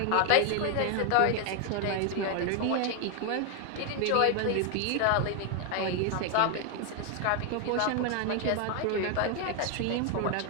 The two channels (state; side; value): different; both; correlation 0.01